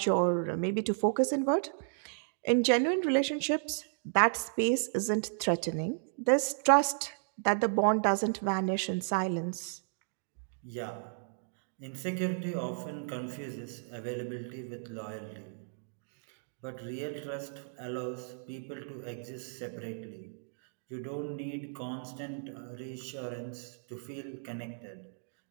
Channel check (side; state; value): left; silent; digital silence